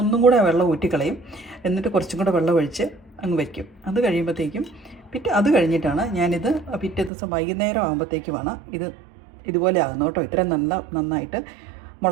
ഒന്നും കൂടെ വെള്ളം ഊറ്റിക്കളയും, എന്നിട്ട് കുറച്ചും കൂടെ വെള്ളം ഒഴിച്ച് അങ്ങ് വയ്ക്കും. അത് കഴിയുമ്പോഴത്തേക്കും അത് കഴിഞ്ഞിട്ടാണ് ഞാനിത് പിറ്റേ ദിവസം വൈകുന്നേരം ആകുമ്പോഴത്തേക്കുമാണ് ഇതുപോലെ ആകുന്നു കേട്ടോ. ഇത്രയും നന്നായിട്ട്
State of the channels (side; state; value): left; drops out; at 7.1 s